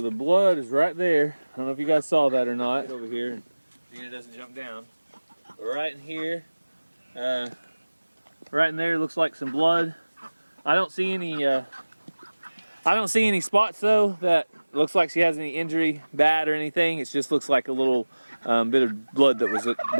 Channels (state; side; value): inverted; both; correlation -1.00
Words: the blood is right there. I don't know if you guys saw that or not. Over here, and Xena doesn't jump down. Right in here, right in there looks like some blood. I don't see any spots though that looks like she has any injury, bad or anything. It just looks like a little bit of blood that was